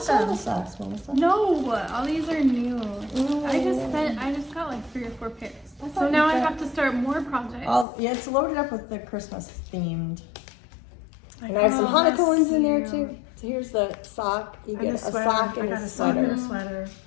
saw them. the socks, Melissa. No, all these are new. I Ooh. just got like 3 or 4 pairs. I So thought now you I got- have to start more projects. Yeah, it's loaded up with the Christmas themed. I And I have some Oh, Hanukkah that's ones in there cute. too. So here's the sock. You And get a a sweater. sock I and got a a sock and sweater. a sweater.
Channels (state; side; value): drops out; right; at 7.9 s